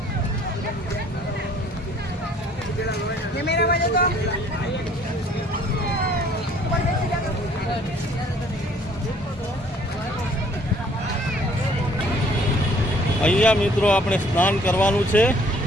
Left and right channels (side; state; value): both; normal; correlation 0.58